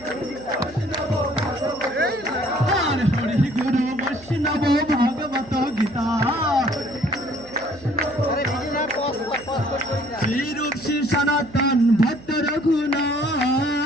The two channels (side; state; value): right; noise; hum, 21 dB below the sound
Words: হরি গুরু বৈষ্ণব ভাগবত গীতা শ্রী রূপ শ্রী সনাতন ভট্ট